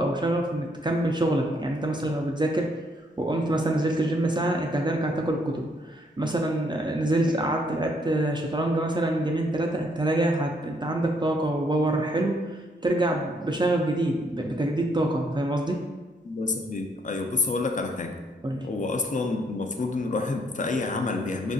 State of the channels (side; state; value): both; normal; correlation 0.70